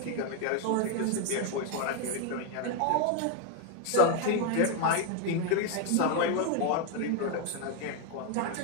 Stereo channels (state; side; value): different; both; correlation 0.01